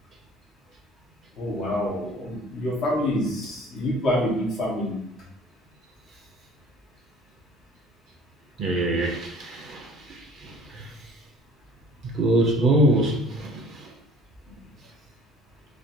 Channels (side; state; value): both; normal; correlation 0.50